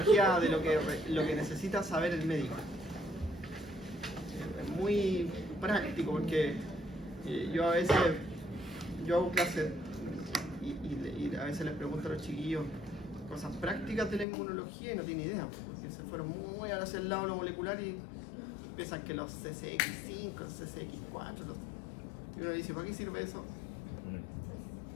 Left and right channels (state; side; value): drops out; right; at 14.2 s